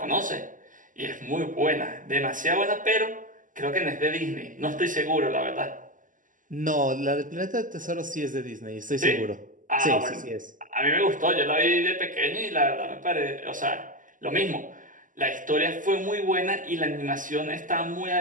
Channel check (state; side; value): late; left; 0.38 ms